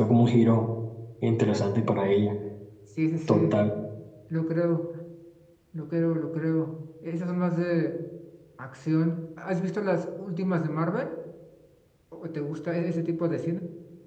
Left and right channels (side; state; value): both; identical; correlation 1.00